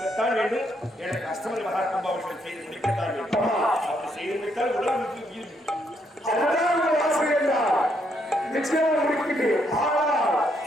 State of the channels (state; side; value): normal; both; correlation 0.74